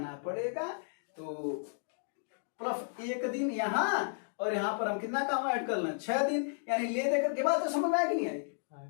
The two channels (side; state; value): right; silent; digital silence